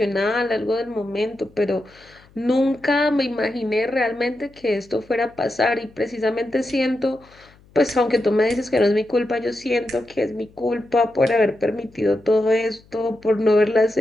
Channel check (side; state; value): left; noise; hum, 28 dB below the sound